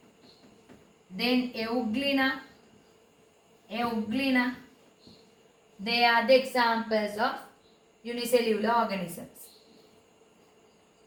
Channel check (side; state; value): both; identical; correlation 1.00